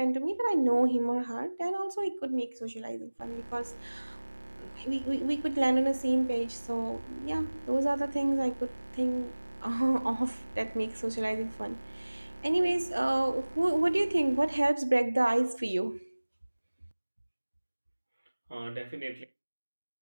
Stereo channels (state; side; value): inverted; both; correlation -1.00